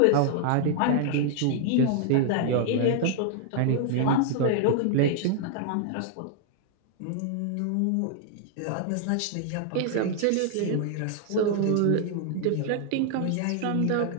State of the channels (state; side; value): different; both; correlation 0.00